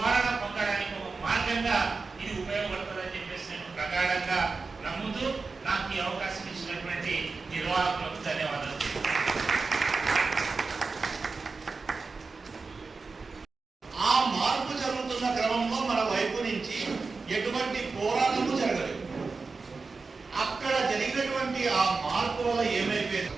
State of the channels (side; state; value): left; quieter; 4.3 dB